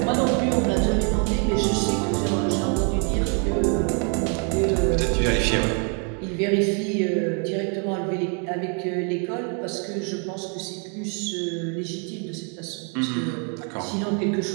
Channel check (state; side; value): quieter; left; 39.4 dB